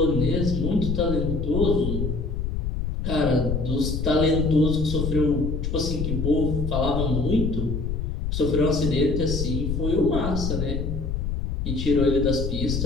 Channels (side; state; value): left; noise; rumble, 2 dB below the sound